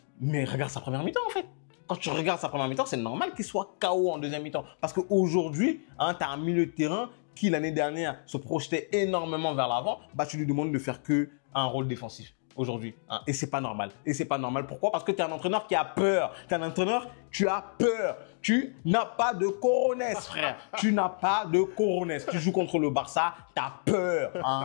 Mais regarde sa première mi-temps, en fait. Quand tu regardes sa première mi-temps, c'est normal qu'il soit KO en deuxième mi-temps. Parce qu'aujourd'hui, hein, tu as un milieu de terrain qui, l'année dernière, se projetait énormément vers l'avant. Bah, tu lui demandes de faire que un rôle défensif aujourd'hui. Hein. Et c'est pas normal. Et c'est pas normal. Pourquoi? Parce que tu es un entraîneur qui a peur. Tu es un entraîneur, tu as peur. Tu n'as pas de coronesse, frère. Tu n'as pas de coronesse. Tu joues contre le Barça, tu as peur.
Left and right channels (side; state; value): right; silent; digital silence